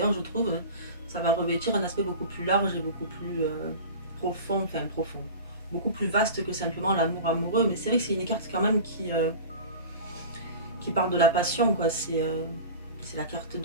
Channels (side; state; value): both; inverted; correlation -0.34